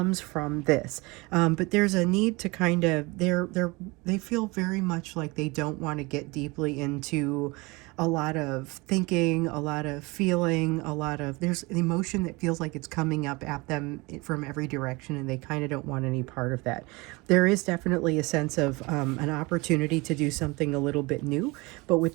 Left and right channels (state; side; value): quieter; left; 24.9 dB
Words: from this, but there's a need to kind of, they feel very much like they don't want to get deeply into a lot of thinking, a lot of feeling, there's an emotion that feels like it's coming up at them from every direction, and they kind of don't want any part of that. There is definitely a sense of an opportunity to do something a little bit new, but with